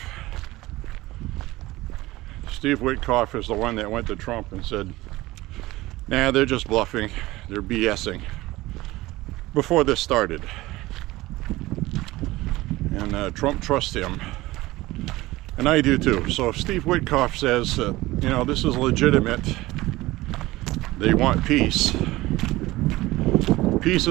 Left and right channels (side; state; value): left; quieter; 18.7 dB